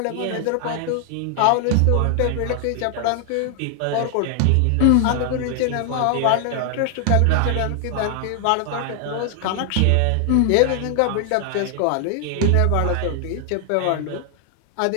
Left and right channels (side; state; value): both; different; correlation 0.00